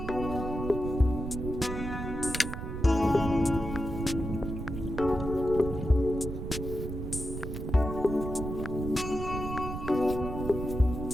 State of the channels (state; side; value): noise; right; rumble, 6 dB below the sound